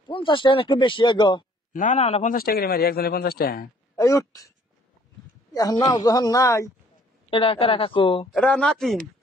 50 টাকা একটু বেশি গো না না না 50 টাকা করে মারি একজনে 50 টাকা এই উঠ এখন নাও যখন নাই এটা কারা কাকু এটা নাতিন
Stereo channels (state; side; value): normal; both; correlation 0.59